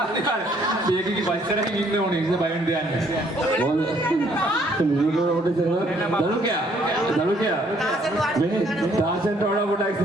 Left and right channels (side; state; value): both; normal; correlation 0.65